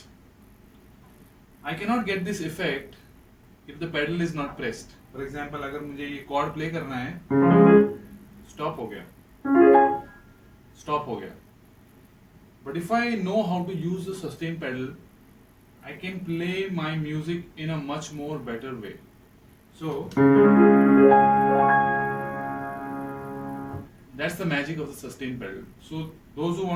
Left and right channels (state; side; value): identical; both; correlation 1.00